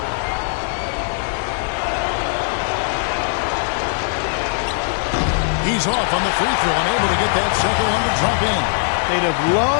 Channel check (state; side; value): silent; right; digital silence